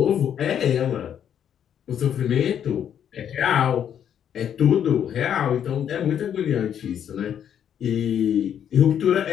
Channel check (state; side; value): quieter; right; 9.2 dB